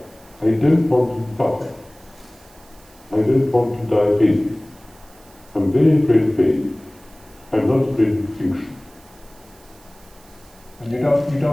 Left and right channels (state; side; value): noise; right; hiss, 27 dB below the sound